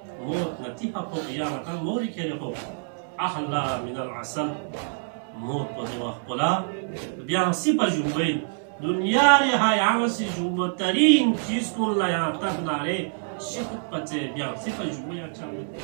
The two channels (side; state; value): left; silent; digital silence